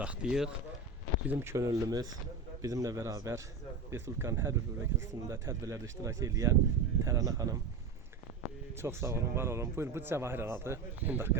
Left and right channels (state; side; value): quieter; left; 4.6 dB